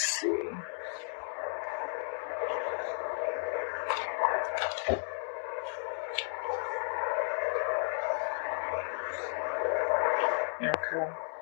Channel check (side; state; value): right; silent; digital silence